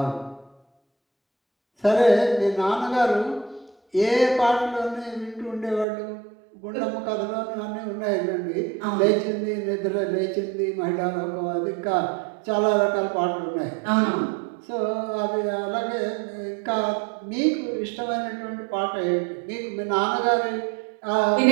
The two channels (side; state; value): left; drops out; at 5.9 s